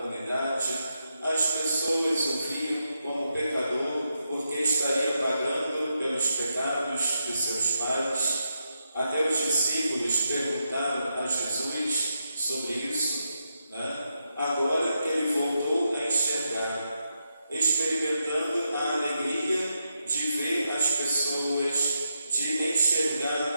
as pessoas o viam como pecador porque estaria pagando pelos pecados de seus pais. Até os discípulos perguntaram a Jesus sobre isso, Agora que ele voltou a enxergar, experimentando a alegria de ver as pessoas, de enxergar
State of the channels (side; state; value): both; inverted; correlation -0.83